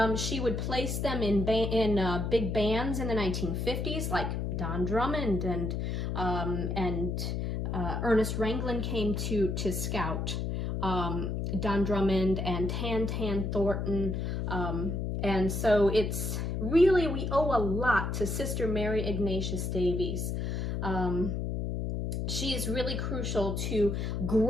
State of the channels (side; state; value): left; noise; hum, 1 dB below the sound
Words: She would place them in big bands in the 1950s, like Don Drummond and Ernest Ranglin came to scout. Don Drummond and Tan Thornton, and so it's really we owe a lot to Sister Mary Ignatius Davies. She is really crucial to